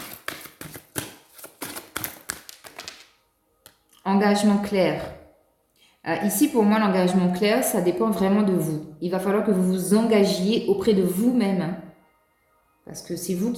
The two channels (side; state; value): both; identical; correlation 1.00